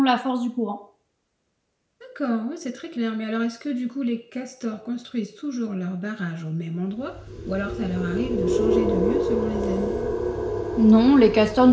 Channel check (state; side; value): identical; both; correlation 1.00